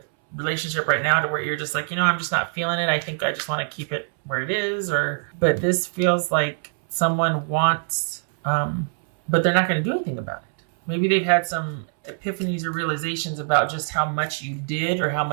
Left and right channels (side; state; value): left; silent; 63 dB below the other